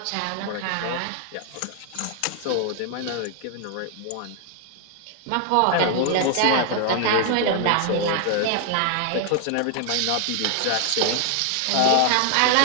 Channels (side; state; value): both; different; correlation 0.00